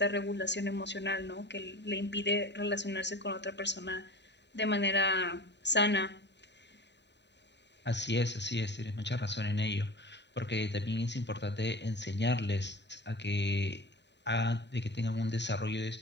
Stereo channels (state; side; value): late; right; 0.51 ms